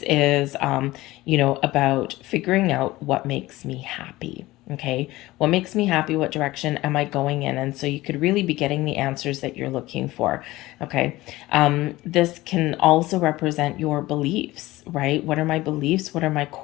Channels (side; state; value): right; quieter; 18.3 dB